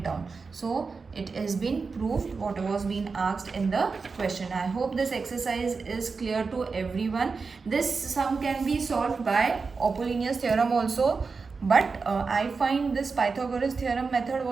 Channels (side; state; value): left; quieter; 4.7 dB